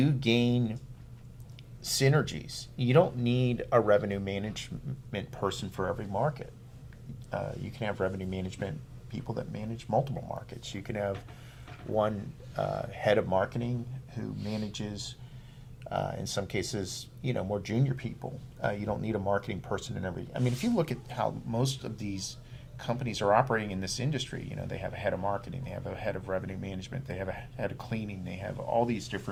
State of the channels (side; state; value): both; identical; correlation 1.00